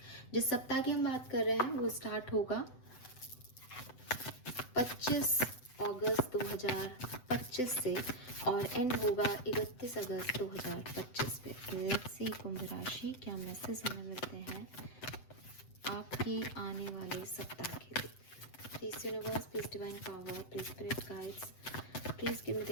जिस सप्ताह की हम बात कर रहे हैं वो स्टार्ट होगा 25 अगस्त 2025 से और एंड होगा 31 अगस्त 2025 पे। लेट्स सी कुंभ राशि क्या मैसेज हमें मिलते हैं आपके आने वाले सप्ताह के लिए। Please universe, please divine power, please spirit guides, please give me the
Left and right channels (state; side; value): late; right; 7.9 ms